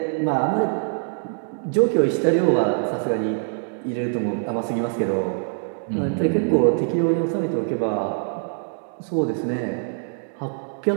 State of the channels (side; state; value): left; silent; digital silence